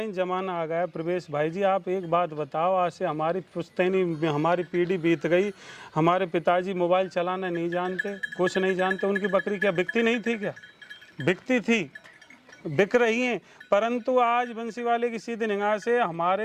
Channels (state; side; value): identical; both; correlation 1.00